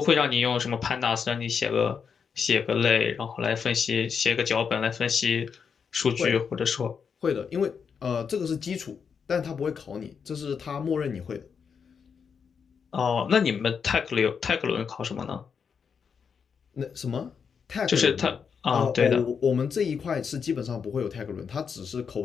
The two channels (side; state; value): right; quieter; 6.4 dB